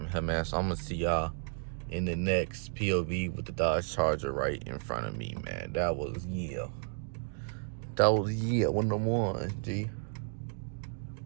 him, man. So I'm gonna see y'all in the next POV with the Dodge Charger right in front of me, man. That was, yeah. One of them ones, G.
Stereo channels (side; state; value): left; silent; digital silence